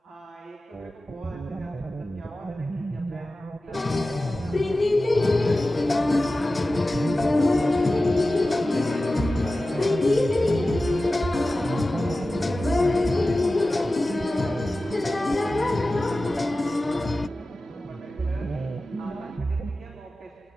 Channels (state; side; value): normal; both; correlation 0.95